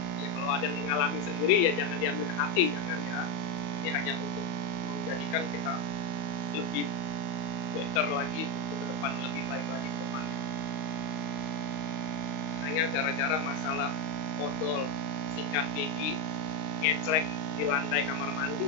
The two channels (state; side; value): late; right; 38 ms